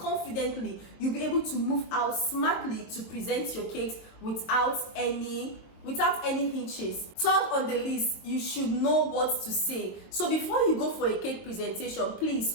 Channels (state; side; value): late; right; 22 ms